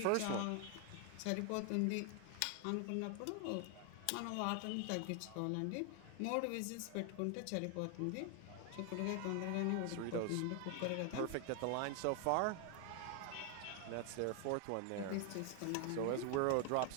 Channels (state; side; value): different; both; correlation 0.00